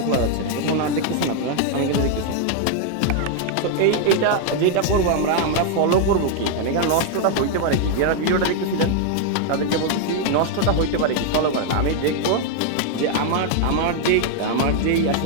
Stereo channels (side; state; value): both; different; correlation 0.00